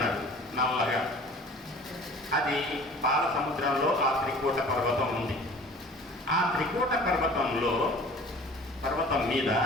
నల్లగా. అది పాల సముద్రంలో ఆ త్రికూట పర్వతం ఉంది. ఆ త్రికూట పర్వతం మీద,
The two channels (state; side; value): normal; both; correlation 0.46